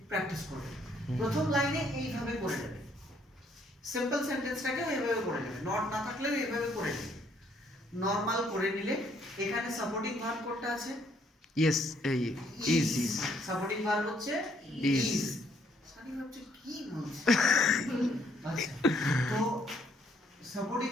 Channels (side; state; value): both; normal; correlation 0.67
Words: প্র্যাকটিস করবে প্রথম লাইনে এইভাবে করে নেবে সিম্পল সেন্টেন্সটাকে এইভাবে করে নেবে নট না থাকলেও এইভাবে করে নেবে নরমাল করে নিলে এখানে সাপোর্টিং ভার্ব কোনটা আছে Yes. Is. সাপোর্টিং ভার্ব হচ্ছে Is. ইজ সানি ভাবছে কি বলছে আচ্ছা তো সাপোর্টিং